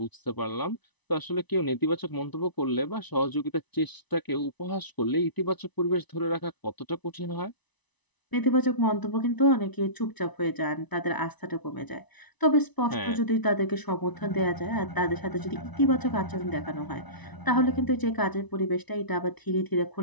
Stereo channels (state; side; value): late; right; 1.0 ms